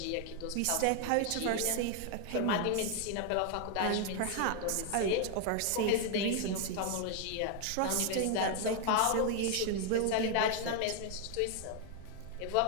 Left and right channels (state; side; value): different; both; correlation 0.00